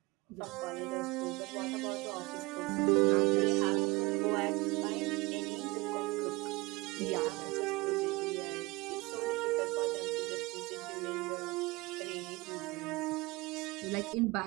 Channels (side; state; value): left; quieter; 23.6 dB